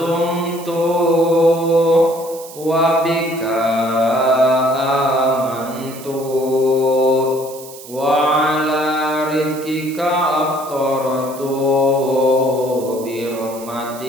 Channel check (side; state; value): right; noise; hiss, 16 dB below the sound